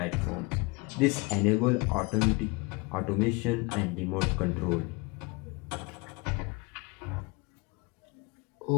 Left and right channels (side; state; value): right; quieter; 26.9 dB